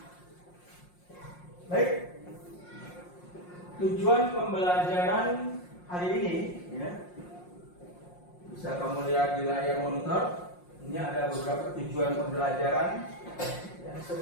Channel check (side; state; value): right; late; 5.6 ms